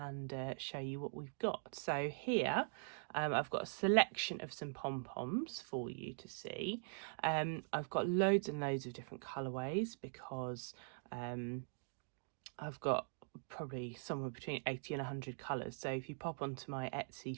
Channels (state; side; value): silent; left; digital silence